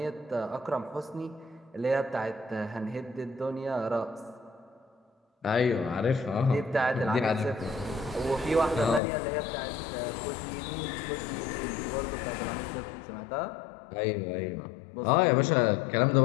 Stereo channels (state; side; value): drops out; right; at 9.0 s